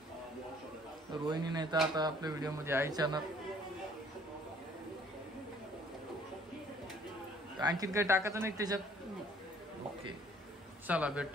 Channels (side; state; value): both; normal; correlation 0.59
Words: रोहिणी नाही तर आता आपल्या व्हिडिओ मध्ये आईच्या आणखीन काही टाकायचं नाही त्याच्यात. ओके चला